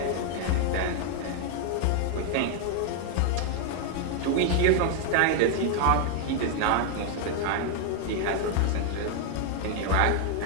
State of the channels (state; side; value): different; both; correlation 0.00